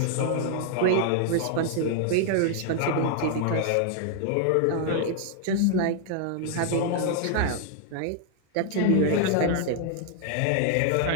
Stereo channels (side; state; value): both; different; correlation 0.00